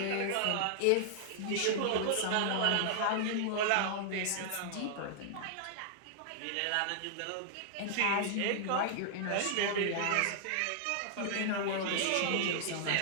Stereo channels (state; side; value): different; both; correlation -0.01